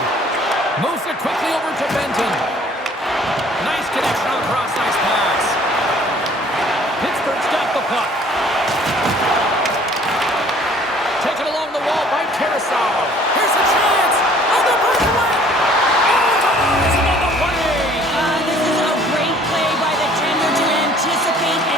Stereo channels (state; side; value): normal; both; correlation 0.55